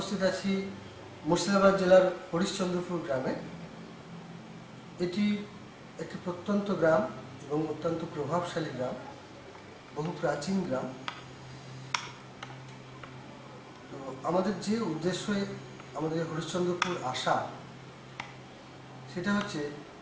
আছি মুর্শিদাবাদ জেলার হরিশ্চন্দ্রপুর গ্রামে। এটি একটি প্রত্যন্ত গ্রাম এবং অত্যন্ত প্রভাবশালী গ্রাম, বহু প্রাচীন গ্রাম। তো আমাদের যে উদ্দেশ্যে আমাদের হরিশ্চন্দ্রপুর আসা, সেটা হচ্ছে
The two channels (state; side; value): identical; both; correlation 1.00